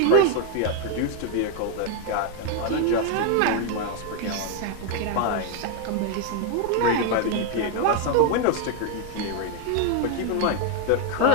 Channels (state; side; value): different; both; correlation 0.01